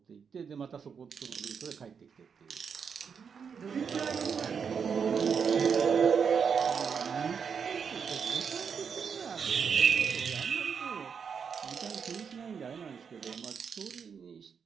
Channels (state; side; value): quieter; left; 6.5 dB